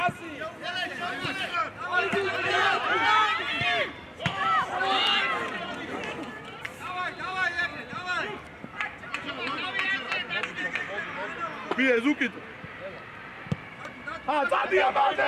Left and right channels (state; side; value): identical; both; correlation 1.00